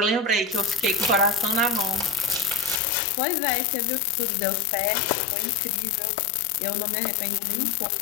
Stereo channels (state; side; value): drops out; right; at 2.8 s